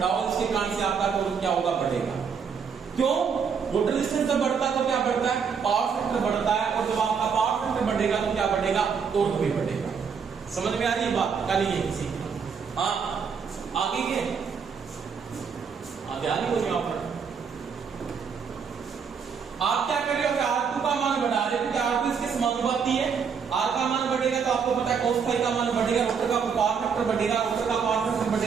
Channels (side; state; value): left; quieter; 6.4 dB